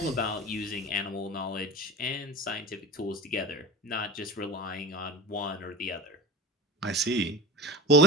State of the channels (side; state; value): both; normal; correlation 0.32